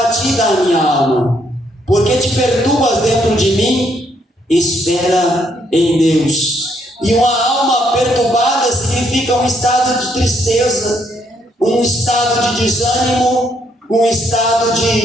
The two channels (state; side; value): normal; both; correlation 0.72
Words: a minha alma? Por que te perturbas dentro de mim? Espera em Deus. E uma alma perturbada significa um estado de tristeza, um estado de desânimo, um estado